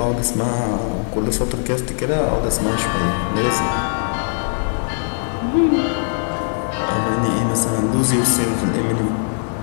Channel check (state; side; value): silent; right; 66 dB below the other